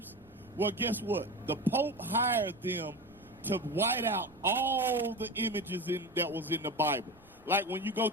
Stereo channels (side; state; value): right; noise; rumble, 27 dB below the sound